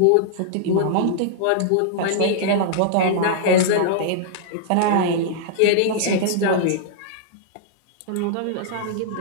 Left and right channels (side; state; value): both; different; correlation -0.01